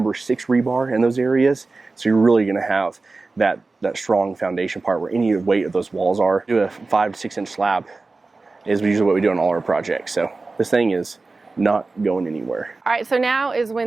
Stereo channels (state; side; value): quieter; left; 3.7 dB